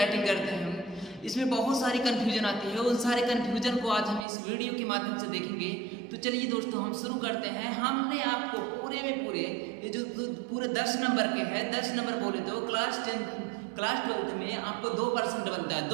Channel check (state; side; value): drops out; left; at 4.2 s